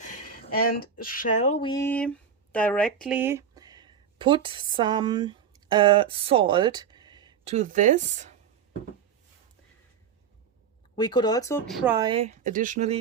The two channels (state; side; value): quieter; left; 7.3 dB